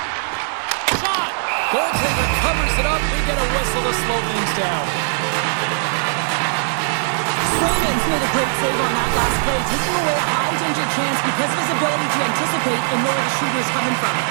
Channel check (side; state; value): left; silent; digital silence